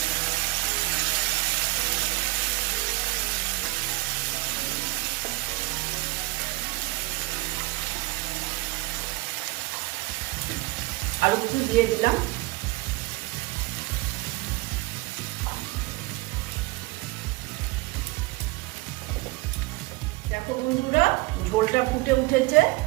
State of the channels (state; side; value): quieter; left; 22.3 dB